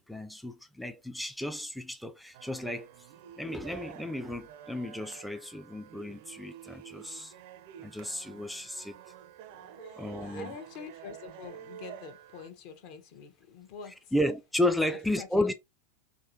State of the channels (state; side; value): normal; both; correlation 0.73